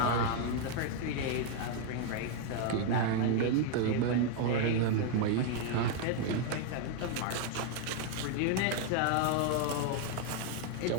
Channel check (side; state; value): both; different; correlation 0.00